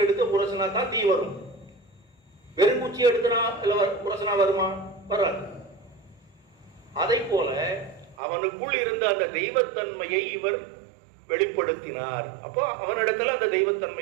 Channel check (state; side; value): drops out; left; at 8.2 s